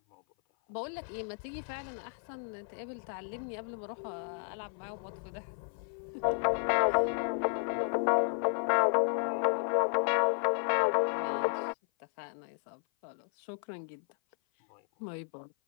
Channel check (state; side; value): silent; right; 56 dB below the other